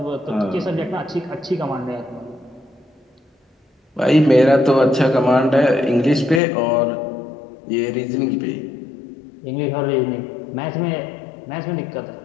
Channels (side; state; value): right; drops out; at 6.4 s